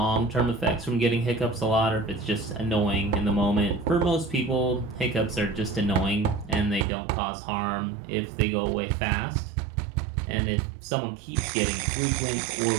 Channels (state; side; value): drops out; left; at 6.9 s